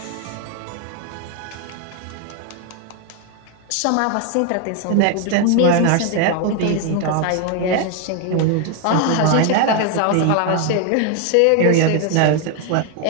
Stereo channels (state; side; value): different; both; correlation 0.01